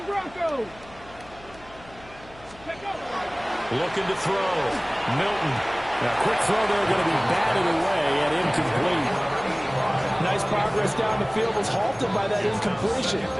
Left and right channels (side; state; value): left; noise; hum, 22 dB below the sound